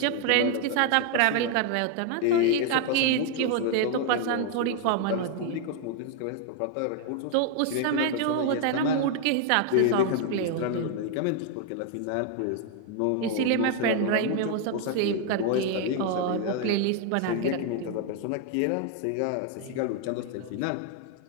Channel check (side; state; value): both; different; correlation 0.00